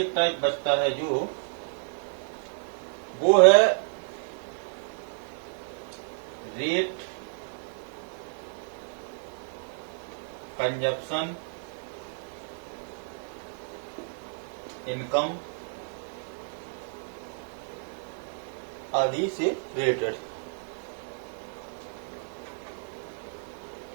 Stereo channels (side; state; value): left; silent; 57 dB below the other